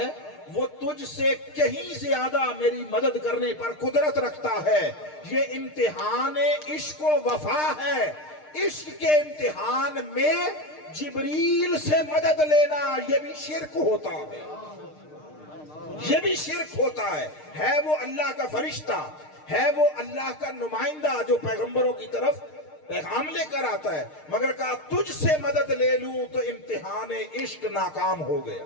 وہ تجھ سے کہیں زیادہ میری مدد کرنے پر قدرت رکھتا ہے. یہ امتحان عشق و وفا ہے. عشق کے امتحان میں جبریل سے مدد لینا یہ بھی شرک ہوتا ہے، یہ بھی شرک ہوتا ہے. ہے وہ اللہ کا فرشتہ، ہے وہ اللہ کا نمائندہ جو پیغمبروں کی طرف پیغام لے کر آتا ہے، مگر کہا تجھ سے مدد لے لوں تو امتحان عشق ناکام ہو گیا،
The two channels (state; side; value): late; right; 6.6 ms